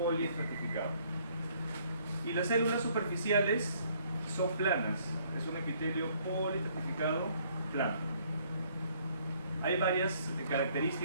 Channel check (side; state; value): both; inverted; correlation -0.64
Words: Y las células superficiales son planas, es un epitelio poliestratificado plano. Hay varias